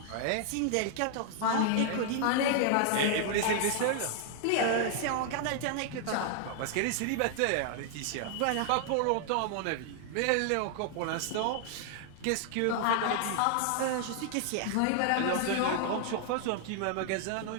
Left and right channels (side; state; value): both; different; correlation 0.00